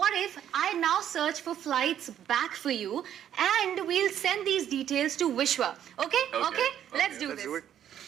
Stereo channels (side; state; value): left; quieter; 10.2 dB